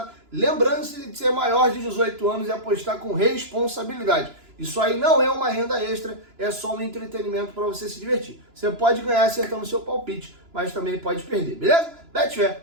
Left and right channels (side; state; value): left; late; 2.9 ms